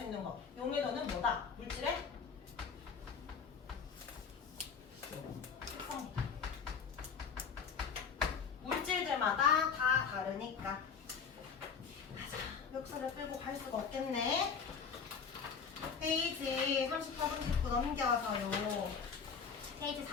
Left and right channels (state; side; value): quieter; right; 6.1 dB